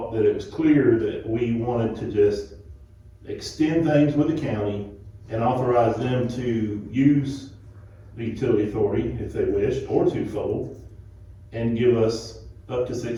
that it was clear that we wanted to just extend things with the county and authorize them to use the utility authority if they wish, or twofold, and give us up to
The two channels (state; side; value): identical; both; correlation 1.00